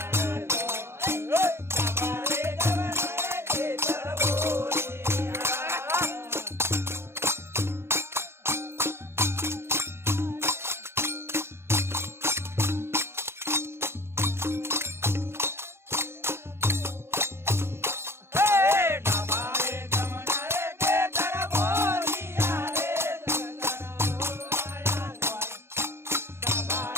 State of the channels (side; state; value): left; late; 0.12 ms